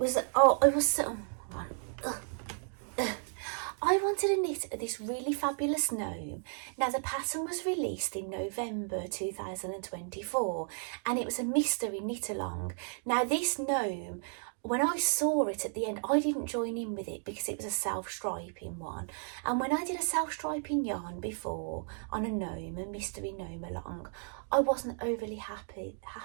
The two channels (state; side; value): silent; left; 55 dB below the other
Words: wanted to knit this really fabulous gnome. Now, the pattern was released in November 2024, and it was a mystery knit along. Now, this gnome, when I saw it at the end, I didn't join in with it because it was a self-striping one. And when I did a self-striping yarn before on a gnome, a mystery gnome along, I wasn't overly happy